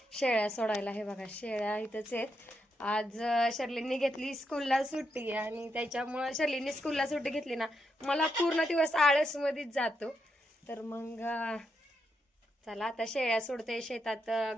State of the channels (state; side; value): normal; both; correlation 0.82